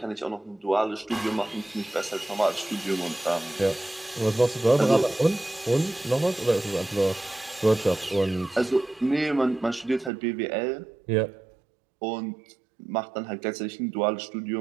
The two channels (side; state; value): left; drops out; at 10.1 s